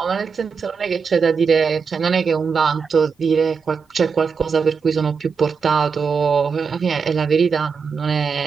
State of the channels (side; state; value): left; quieter; 5.7 dB